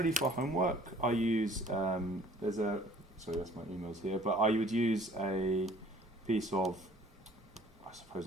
for homework, I use, sorry, that's my emails here, but I would use a piece of, I suppose,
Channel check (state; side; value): normal; both; correlation 0.54